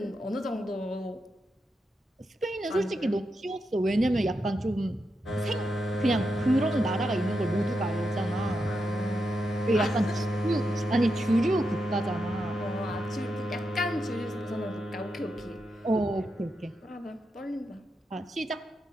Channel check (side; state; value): both; normal; correlation 0.86